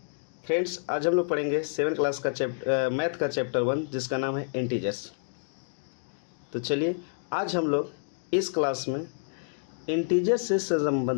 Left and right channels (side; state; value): right; silent; digital silence